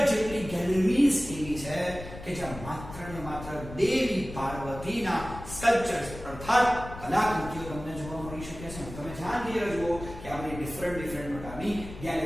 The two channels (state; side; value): noise; left; rumble, 12 dB below the sound